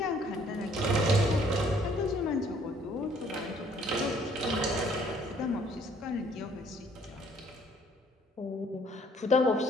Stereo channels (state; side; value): normal; both; correlation 0.61